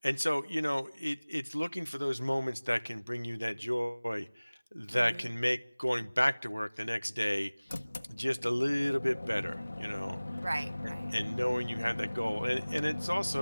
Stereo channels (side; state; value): both; inverted; correlation -1.00